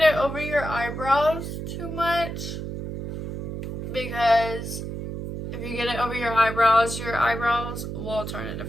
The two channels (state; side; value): noise; right; hum, 6 dB below the sound